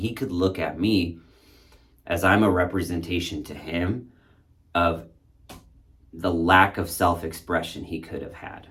could look at me as I'm a representation to him of the lack of self-expression he could have had.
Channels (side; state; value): both; identical; correlation 1.00